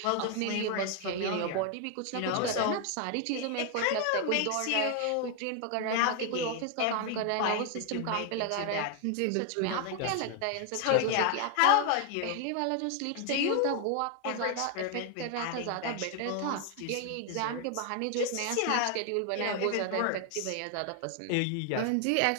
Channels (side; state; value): both; different; correlation 0.01